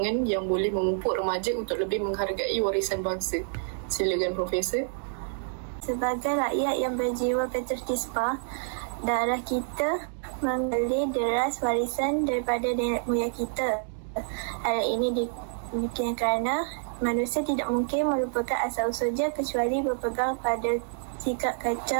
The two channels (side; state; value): left; silent; 59 dB below the other